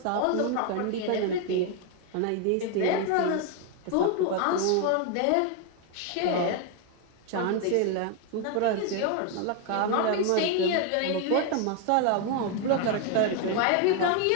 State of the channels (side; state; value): both; different; correlation 0.01